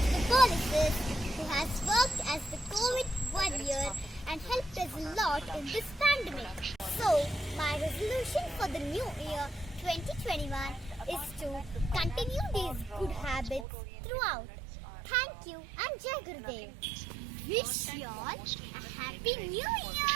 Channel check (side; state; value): left; drops out; at 13.7 s